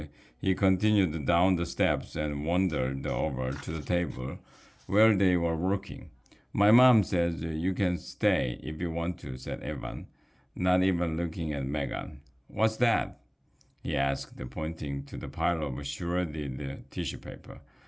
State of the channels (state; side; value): identical; both; correlation 1.00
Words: he continued down the steps and wandered over to the table where they were working. My mom says you can stay if you want to, said Evan, not even looking at Megan. What's that? He asked, pointing to the pile of shredded tissue paper.